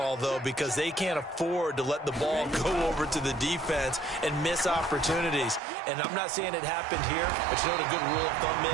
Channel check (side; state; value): left; drops out; at 5.6 s